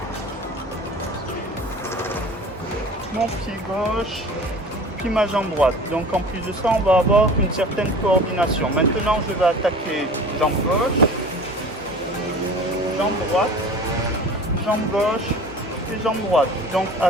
mon pied gauche, puis ma jambe droite. Donc en plus de ça, on va avoir une certaine coordination. Maintenant, je vais attaquer jambe gauche, jambe droite, jambe gauche et jambe droite. Donc à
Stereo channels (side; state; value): both; normal; correlation 0.41